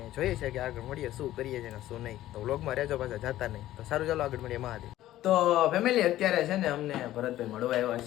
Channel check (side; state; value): right; quieter; 14.2 dB